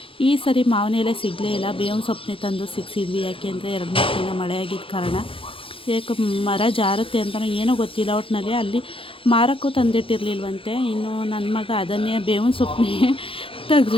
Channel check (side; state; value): right; late; 0.26 ms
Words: ಈ ಸರಿ ಮಾವಿನ ಎಲೆ ಸಿಗಲೇ ಇಲ್ಲ. ಬೇವಿನ ಸೊಪ್ಪನ್ನೇ ತಂದು ಸಿಕ್ಸಿದ್ವಿ. ಯಾಕೆಂದರೆ 2-3 ದಿನ ಮಳೆ ಆಗಿದ್ದ ಕಾರಣ ಯಾಕೆ ಮರ ಜಾರುತ್ತೆ ಅಂತಲೋ ಏನೋ ಗೊತ್ತಿಲ್ಲ. ಒಟ್ಟಿನಲ್ಲಿ ಅಲ್ಲಿ ಮಾರಕ್ಕೂ ತಂದಿಟ್ಟಿರಲಿಲ್ವಂತೆ. ಇನ್ನು ನನ್ನ ಮಗ ಅದನ್ನೇ ಬೇವಿನ ಸೊಪ್ಪನ್ನೇ